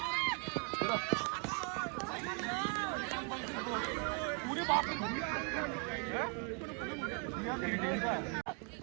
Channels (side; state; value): left; quieter; 36.4 dB